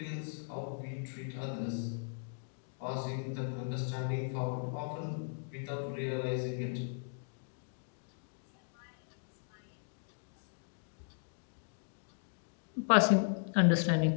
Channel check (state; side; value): silent; right; digital silence